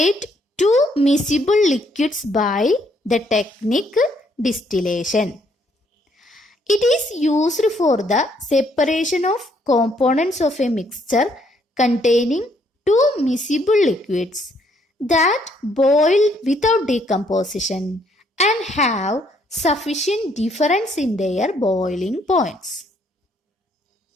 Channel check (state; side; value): normal; both; correlation 0.69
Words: two miscible liquids by the technique distillation. It is used for the separation of components of a mixture containing two miscible liquids that boil without decomposition and have sufficient difference in their boiling points.